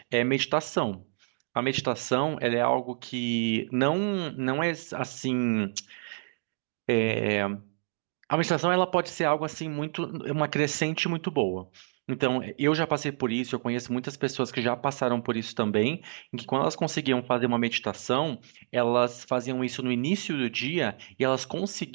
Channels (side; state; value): left; silent; digital silence